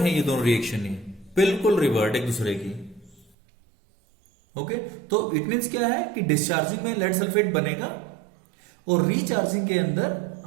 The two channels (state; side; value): drops out; left; at 3.3 s